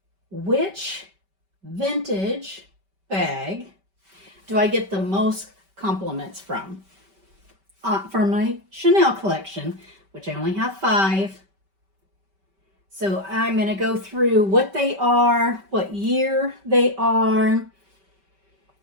which vintage bag do I get the most compliments from? For my Chanel collection, which I only have 5. So I'm going to go through what they are, what year they are,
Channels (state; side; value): late; left; 5.2 ms